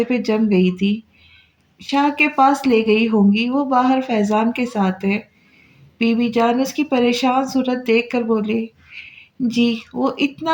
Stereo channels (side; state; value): both; identical; correlation 1.00